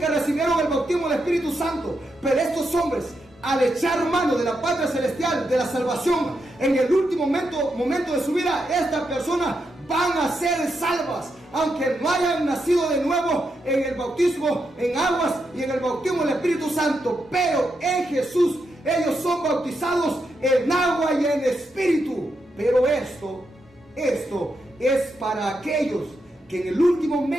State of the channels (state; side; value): normal; both; correlation 0.83